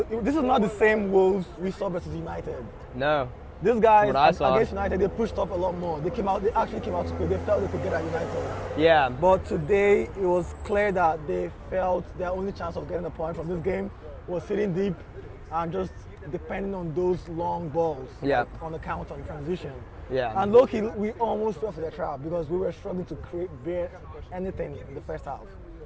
not the same Wolves we saw versus United. No. These guys What I saw. against United, they pushed up a lot more. They actually came out to play. They felt they could get at United. Yeah. But today, it was clear that they felt their only chance of getting a point from this game was sitting deep and just depending on those long balls, Yeah. like on the counter and transition. Yeah. And low-key, we almost fell for their trap because we were struggling to bear anything in the first half.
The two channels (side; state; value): both; identical; correlation 1.00